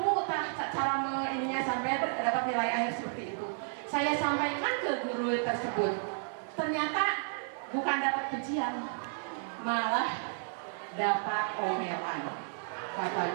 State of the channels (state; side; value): silent; left; 56 dB below the other